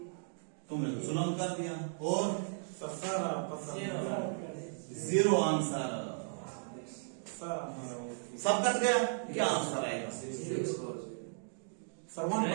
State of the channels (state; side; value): silent; left; digital silence